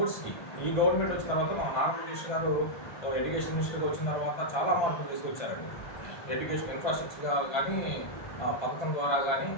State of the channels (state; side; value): late; right; 1.2 ms